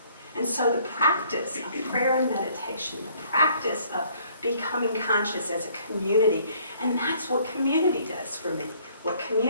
And so the practice of prayer and meditation, the practice of becoming conscious as a community, and that's what community does for me. What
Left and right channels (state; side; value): inverted; both; correlation -0.61